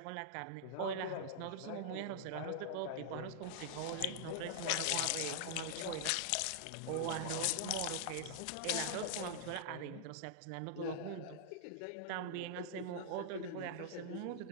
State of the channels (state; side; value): different; both; correlation -0.01